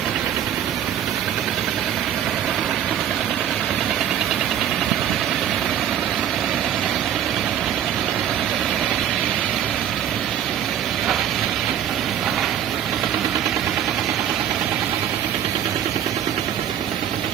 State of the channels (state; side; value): quieter; left; 10.0 dB